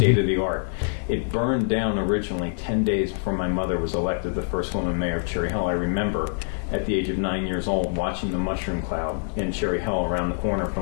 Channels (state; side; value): silent; right; digital silence